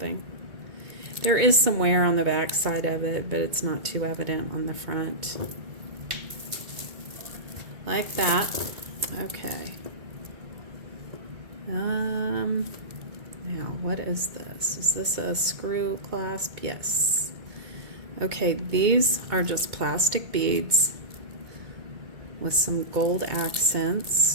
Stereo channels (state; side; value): late; left; 2.2 ms